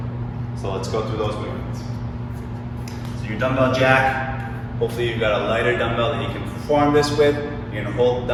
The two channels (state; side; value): identical; both; correlation 1.00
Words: So let's go through those movements. So your dumbbell jack, hopefully you've got a lighter dumbbell that you can perform this with. You're gonna hold the